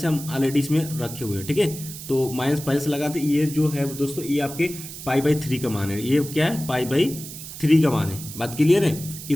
हम ऑलरेडी इसमें रखे हुए हैं। ठीक है, तो माइनस पहले से लगाते, ये जो है दोस्तों ये आपके π/3 का मान है। ये क्या है? π/3 का मान है। बात क्लियर है?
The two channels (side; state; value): right; noise; hiss, 12 dB below the sound